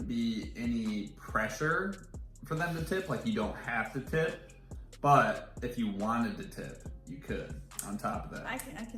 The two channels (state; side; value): identical; both; correlation 1.00